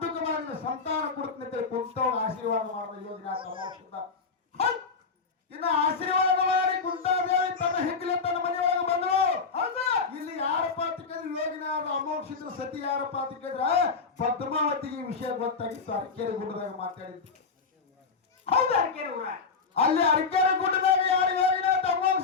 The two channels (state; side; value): quieter; right; 4.9 dB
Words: ಮಾಡಿ ಸಂತಾನ ಕೊಡ್ತೀನಿ ಕುಂತವ್ ಆಶೀರ್ವಾದ ಮಾಡಿದ ಯೋಗಿನಾಥ ಅಮೋಕ್ಷದ. ಇನ್ನು ಆಶೀರ್ವಾದ ಮಾಡಿ ಕುಂತಾದೇವಿ ತನ್ನ ಹೆಗ್ಗಲೆ ತನ್ನ ಮನೆಯೊಳಗೆ ಬಂದ್ರು. ಹೌದು ಇಲ್ಲಿ ಯಾರಪ್ಪ ಅಂತ ಕೇಳಿದ್ರೆ ಯೋಗಿನಾಥ ಅಮೋಕ್ಷದ ಸತಿ ಯಾರಪ್ಪ ಅಂತ ಕೇಳಿದ್ರೆ ಪದ್ಮಾವತಿಗೆ ಈ ವಿಷಯ ಗೊತ್ತಾಗಿತ್ತು. ಅರಕೇರಿ ಗುಡ್ಡದಾಗ ಮಾತಾಡಿದ್ದು. ಹೌದು ಅರಕೇರಿ ಊರ. ಅಲ್ಲಿ ಅರಕೇರಿ ಗುಡ್ಡದಾಗ ಯಾರು ಯೋಗಿನಾಥ